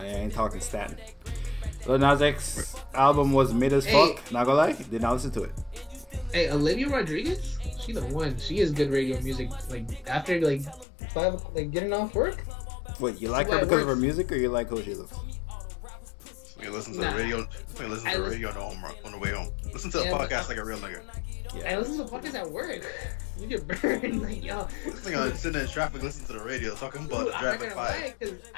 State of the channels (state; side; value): drops out; right; at 10.9 s